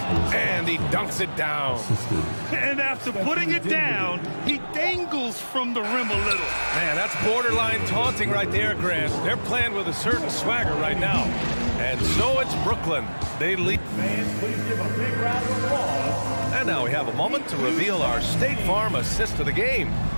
and he dunks it down. And after putting it down, he dangles from the rim a little. Man, that's borderline taunting right there, Grant. They're playing with a certain swagger right now. And so it's Brooklyn. They lead. fans, please give a big round of applause. And now we have a moment to reveal our State Farm assist of the game.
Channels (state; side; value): inverted; both; correlation -1.00